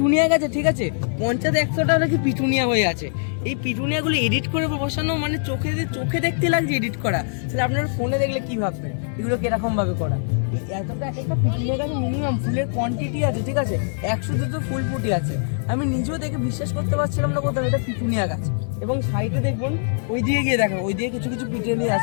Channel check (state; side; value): silent; right; 64 dB below the other